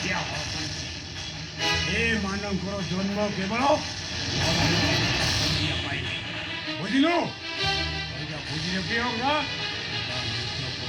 ଏମାନଙ୍କର ଜନ୍ମ କେବଳ ବୁଝିଲୁ ବୁଝିଲେ କି ହବ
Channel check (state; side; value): identical; both; correlation 1.00